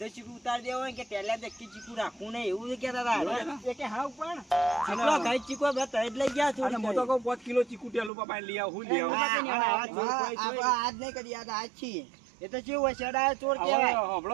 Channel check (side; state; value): left; drops out; at 8.1 s